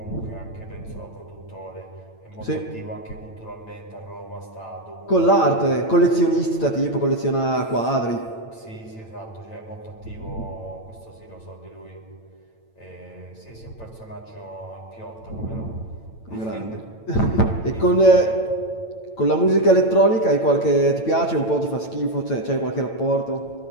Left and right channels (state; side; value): late; right; 8.9 ms